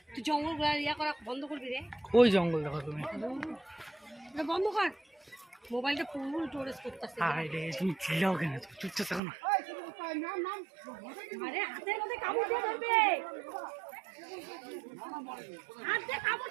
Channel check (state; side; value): drops out; left; at 9.2 s